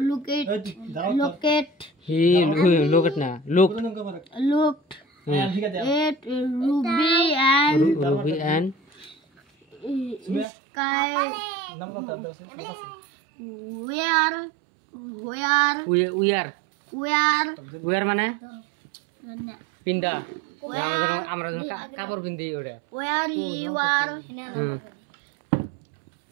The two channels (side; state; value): left; drops out; at 10.5 s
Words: he look না লুক looked হুম ঠিক আছে at Ruby and Ruby and Sky নাম তো আছে where উয়ার মানে পিন্দা আমরা যখন কাপড় পিন্দি ওটা where you are হুম